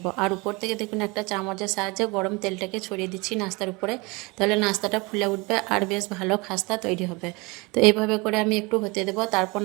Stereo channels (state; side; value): quieter; left; 26.2 dB